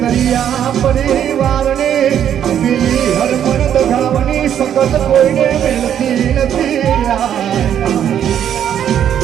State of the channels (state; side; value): quieter; left; 9.7 dB